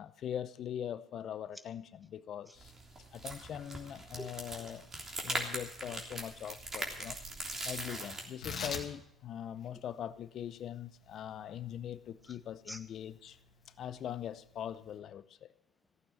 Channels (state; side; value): quieter; right; 4.4 dB